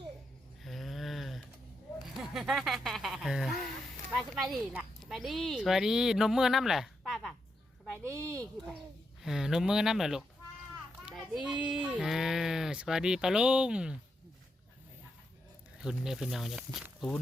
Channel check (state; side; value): normal; both; correlation 0.83